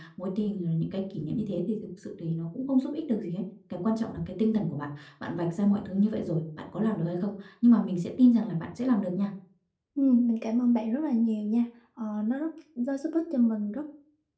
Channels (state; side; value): identical; both; correlation 1.00